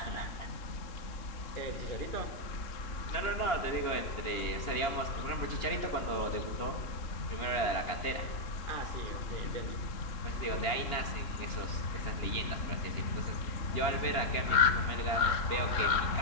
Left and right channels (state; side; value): late; right; 2.8 ms